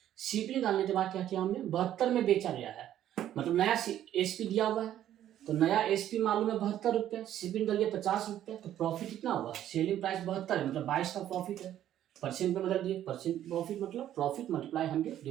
सीपी निकालने के बाद क्या किया हमने, 72 में बेचा गया है, मतलब नया एसपी दिया हुआ है, तो नया एसपी मालूम है 72 रुपये, सीपी निकल गया 50 रुपये, तो प्रॉफिट कितना हुआ, सेलिंग प्राइस 72 है मतलब 22 का प्रॉफिट है, परसेंट में बदल दिए, परसेंट प्रॉफिट मतलब profit multiply 100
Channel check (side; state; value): left; quieter; 11.6 dB